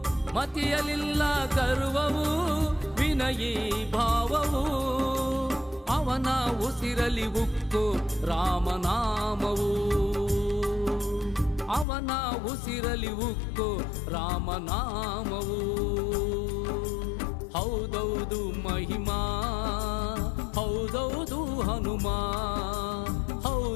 ಮತಿಯಲಿಲ್ಲ ಗರ್ವವು ವಿನಯೀ ಭಾವವು ಅವನ ಉಸಿರಲಿ ಉಕ್ಕು ರಾಮನಾಮವು ಅವನ ಉಸಿರಲಿ ಉಕ್ಕು ರಾಮನಾಮವು ಹೌದೌದು ಮಹಿಮಾ ಹೌದೌದು ಹನುಮ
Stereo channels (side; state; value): right; drops out; at 11.9 s